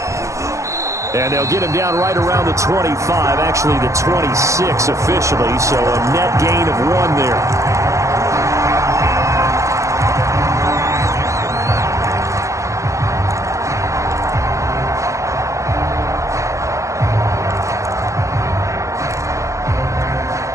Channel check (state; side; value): late; left; 0.15 ms